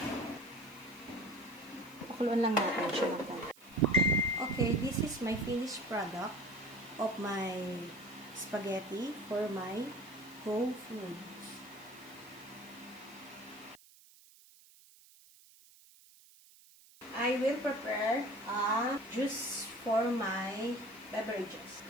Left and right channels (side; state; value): right; noise; hiss, 24 dB below the sound